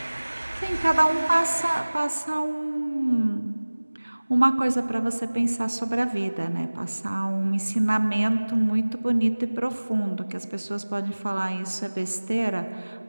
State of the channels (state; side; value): inverted; both; correlation -1.00